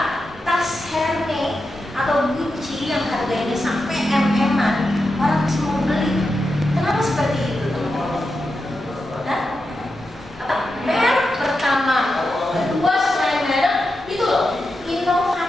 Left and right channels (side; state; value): both; normal; correlation 0.89